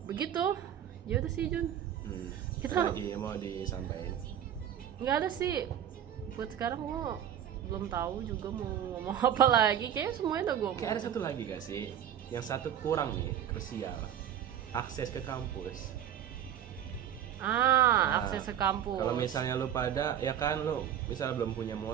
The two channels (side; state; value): left; quieter; 10.0 dB